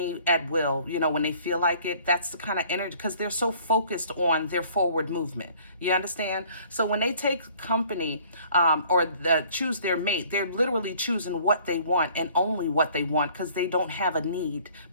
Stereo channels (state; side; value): inverted; both; correlation -0.55